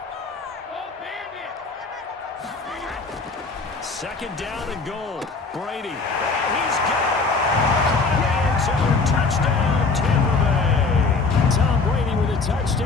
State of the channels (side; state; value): right; quieter; 4.2 dB